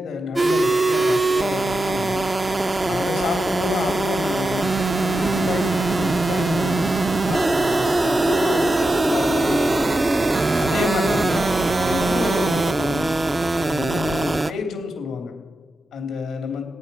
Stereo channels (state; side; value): normal; both; correlation 0.90